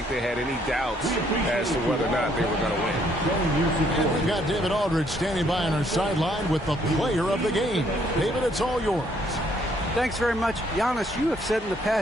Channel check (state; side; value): normal; both; correlation 0.67